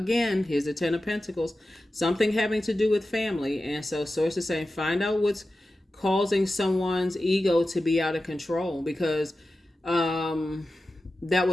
Here's the Ten of Pentacles, something having to do with family. And so Source is saying, find out what's causing someone's ego to be out of control, because that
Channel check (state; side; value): normal; both; correlation 0.93